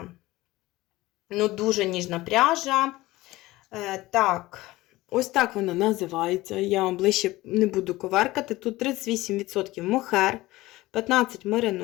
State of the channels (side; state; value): right; quieter; 18.5 dB